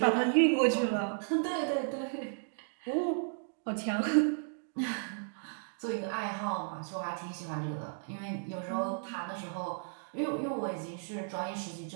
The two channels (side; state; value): left; silent; digital silence